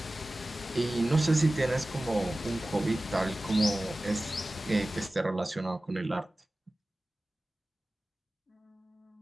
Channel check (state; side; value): normal; both; correlation 0.96